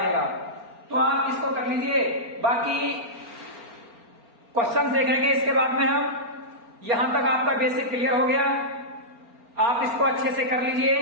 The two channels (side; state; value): left; late; 4.4 ms